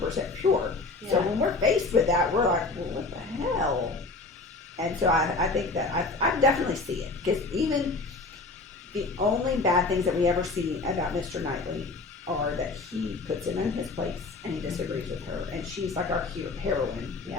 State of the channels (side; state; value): right; quieter; 3.6 dB